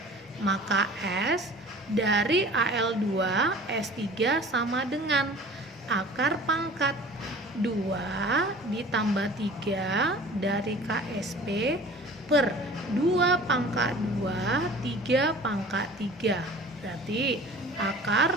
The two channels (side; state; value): both; normal; correlation 0.44